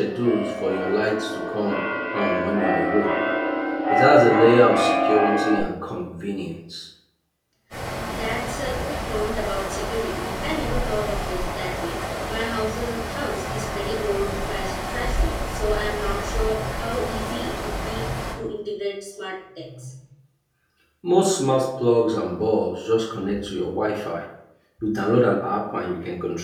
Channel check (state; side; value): identical; both; correlation 1.00